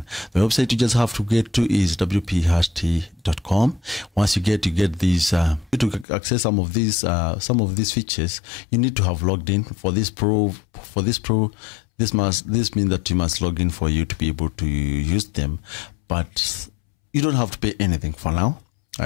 The website you just have to get to is wphashtag.com. Once you get these, to access some of these features, you need to have logged in. For this means that you must log in for you to be able to use them. But you don't have to pay anything for now.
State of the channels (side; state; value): right; drops out; at 6.1 s